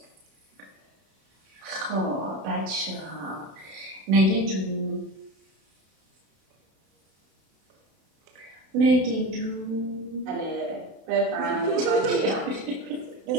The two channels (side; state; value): left; late; 32 ms